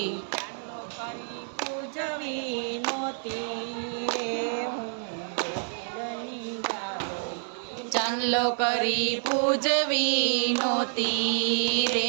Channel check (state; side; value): silent; left; 59 dB below the other